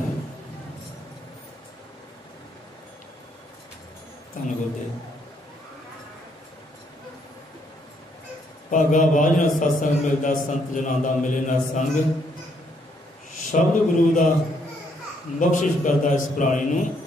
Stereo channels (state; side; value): normal; both; correlation 0.71